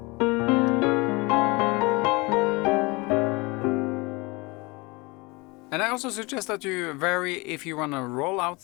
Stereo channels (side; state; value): right; quieter; 25.9 dB